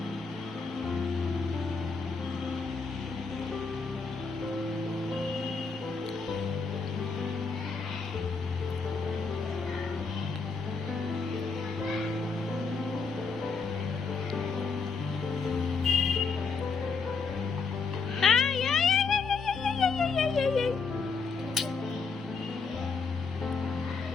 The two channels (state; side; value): quieter; right; 4.8 dB